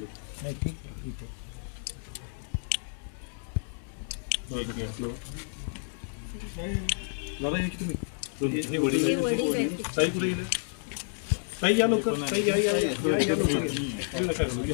नाही, ठीक आहे, ठीक आहे. दादा या की तुम्ही हे वडील ताई कुठे गेले? ताई या लवकर, ताई या या या या लवकर. येऊ नका घालू,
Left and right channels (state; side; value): silent; right; digital silence